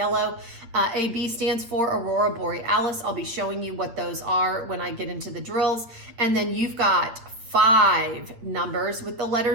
AB stands for Aurora Borealis. I'll be showing you what those are when I get into the drills. And then you've got 5 numbers with the letter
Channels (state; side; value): late; left; 8.7 ms